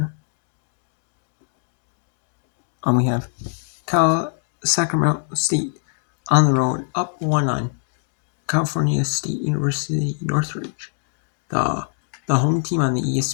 We have Sacramento State on the road, up 1 on California State University Northridge. The home team on the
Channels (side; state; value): right; silent; digital silence